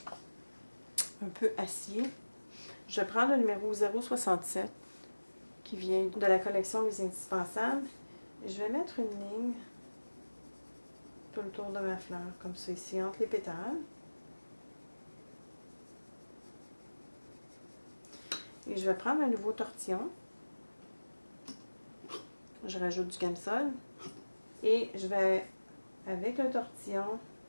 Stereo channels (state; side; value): inverted; both; correlation -1.00